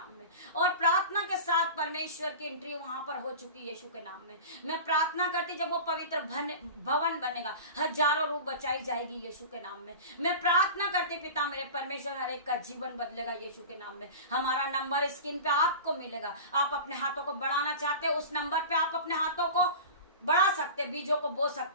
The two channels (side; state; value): both; inverted; correlation -0.33